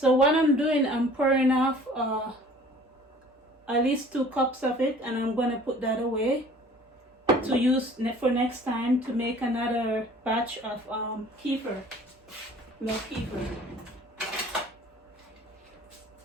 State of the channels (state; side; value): normal; both; correlation 0.50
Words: what I'm doing, I'm pouring off at least 2 cups of it, and I'm going to put that away to use for next time to make another batch of kefir, milk kefir.